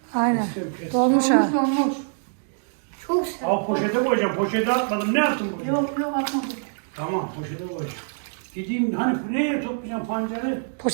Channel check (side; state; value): left; silent; digital silence